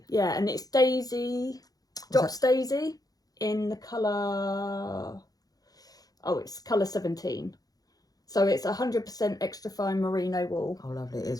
Yeah, and it's Daisy, Was Drops Daisy in the colour, it's colour 17. So it's 100% extra fine merino wool. Oh, lovely. It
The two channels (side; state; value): right; late; 0.18 ms